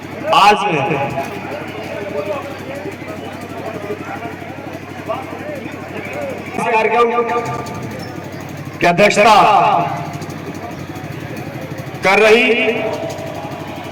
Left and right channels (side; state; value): both; identical; correlation 1.00